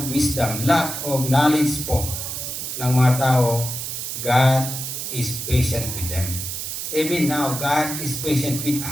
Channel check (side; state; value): right; noise; hiss, 5 dB below the sound